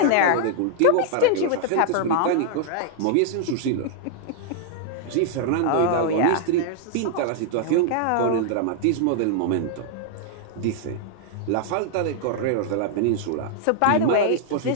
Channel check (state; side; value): different; both; correlation -0.01